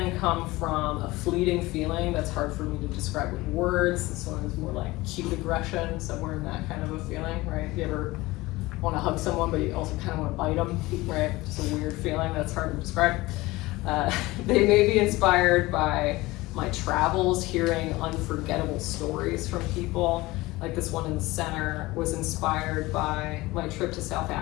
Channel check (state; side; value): quieter; right; 20.2 dB